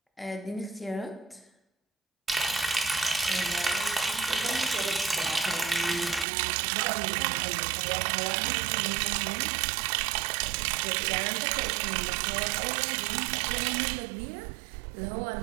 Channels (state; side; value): drops out; left; at 6.2 s